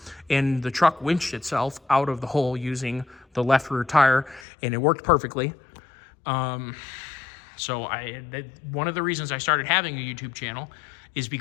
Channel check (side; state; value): right; drops out; at 4.5 s